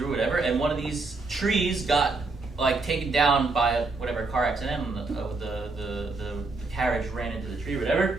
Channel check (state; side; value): quieter; left; 3.7 dB